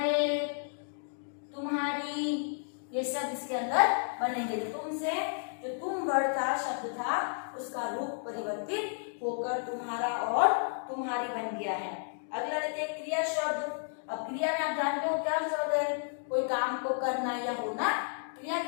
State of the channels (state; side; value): silent; right; digital silence